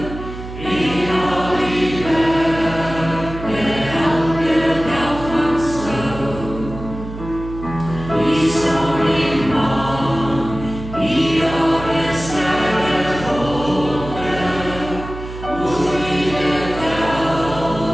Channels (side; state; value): right; noise; hum, 11 dB below the sound